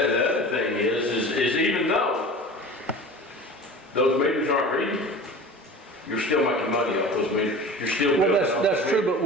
thing is even though those meters aren't reading, you're still making money off those meters. You're still Well, building off that's the true,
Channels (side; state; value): both; normal; correlation 0.37